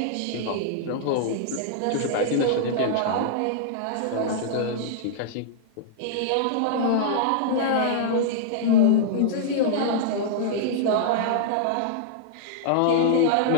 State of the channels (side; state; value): both; different; correlation -0.01